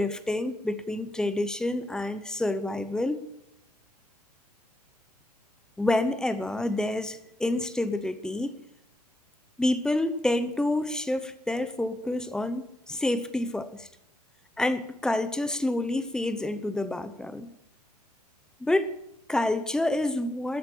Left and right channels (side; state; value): both; normal; correlation 0.84